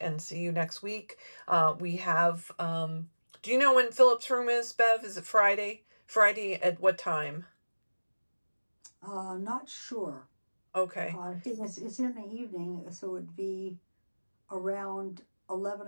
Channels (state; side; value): inverted; both; correlation -1.00